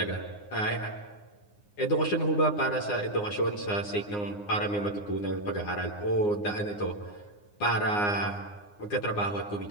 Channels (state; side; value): late; right; 9.7 ms